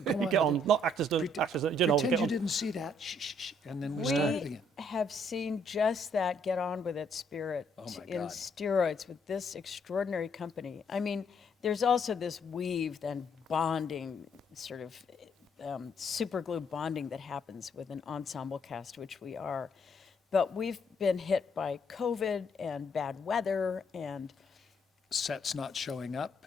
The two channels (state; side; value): normal; both; correlation 0.69